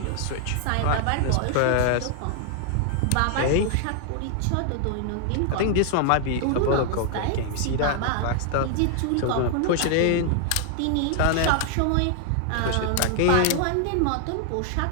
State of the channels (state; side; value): different; both; correlation 0.00